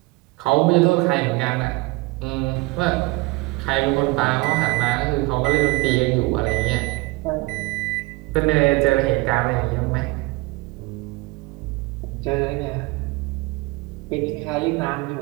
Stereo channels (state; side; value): quieter; left; 23.6 dB